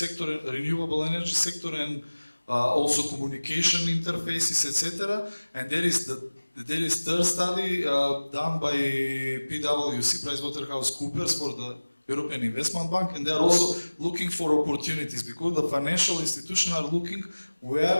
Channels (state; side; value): inverted; both; correlation -1.00